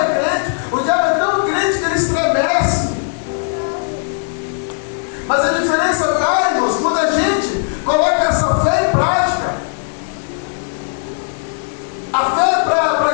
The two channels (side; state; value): right; silent; digital silence